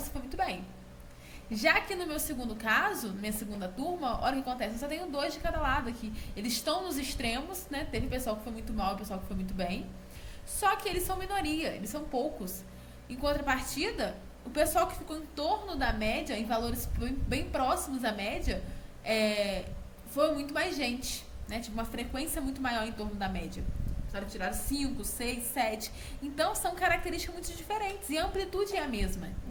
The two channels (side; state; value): both; identical; correlation 1.00